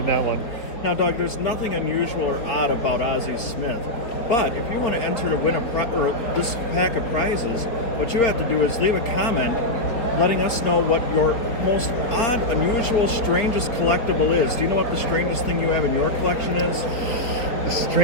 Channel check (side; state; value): right; late; 4.0 ms